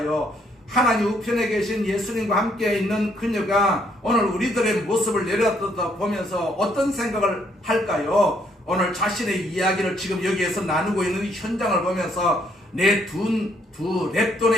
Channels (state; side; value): normal; both; correlation 0.69